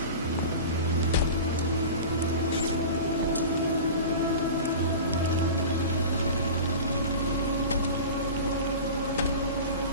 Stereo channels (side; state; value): both; inverted; correlation -0.33